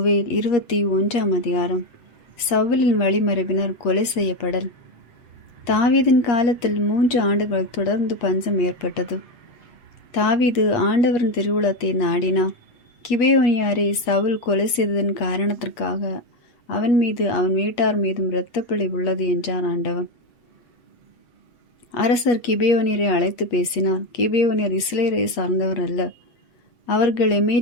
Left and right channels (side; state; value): right; late; 8.4 ms